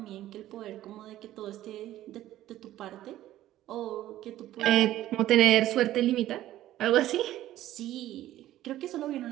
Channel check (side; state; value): left; quieter; 13.9 dB